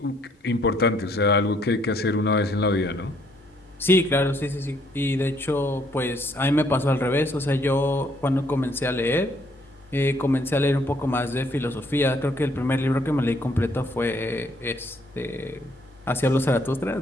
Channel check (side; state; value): both; normal; correlation 0.67